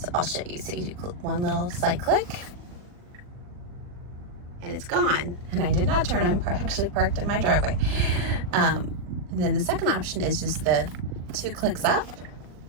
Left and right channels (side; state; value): left; late; 40 ms